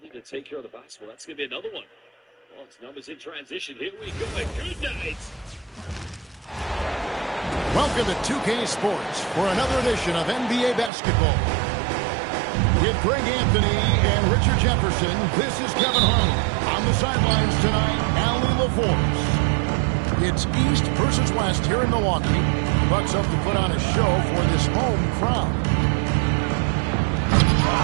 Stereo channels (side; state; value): left; drops out; at 10.9 s